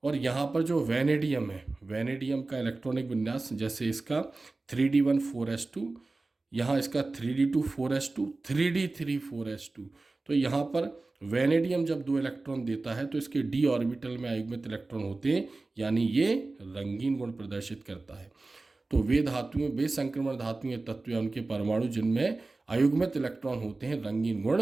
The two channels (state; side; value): quieter; left; 3.4 dB